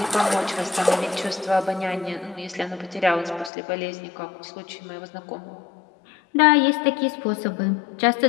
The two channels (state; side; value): drops out; right; at 3.5 s